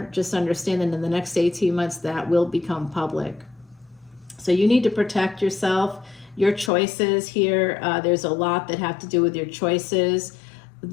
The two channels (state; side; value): drops out; right; at 6.7 s